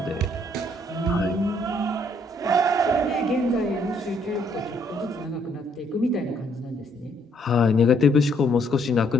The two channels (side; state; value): both; normal; correlation 0.68